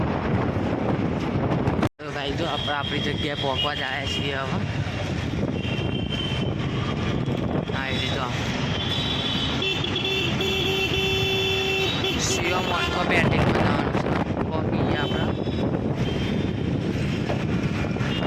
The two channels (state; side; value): identical; both; correlation 1.00